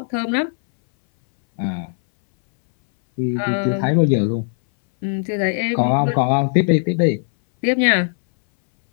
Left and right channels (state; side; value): silent; right; 62 dB below the other